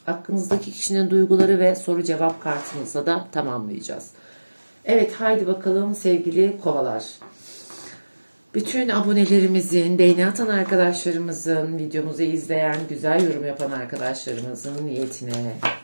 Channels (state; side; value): inverted; both; correlation -1.00